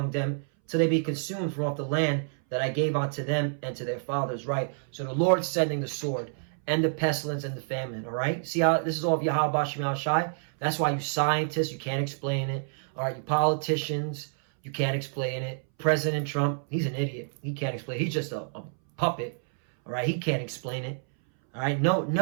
them, till they be consumed from off the land that I gave unto them and to their fathers. Right? So the Lord's sending the sword and the pestilence and the famine. All right? See how this is all of Yahweh Bashim Al Shai? That's why you scientists, you can't explain it. All right? You politicians, you can't explain it. President Trump, he's an idiot. He can't explain it. He's just a puppet. All right? He can't explain it. All right? No,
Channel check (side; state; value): left; silent; 59 dB below the other